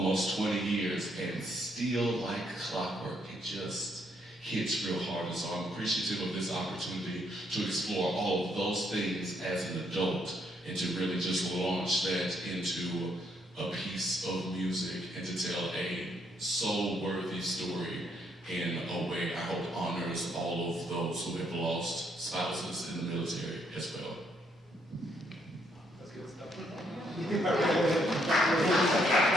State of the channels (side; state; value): both; normal; correlation 0.72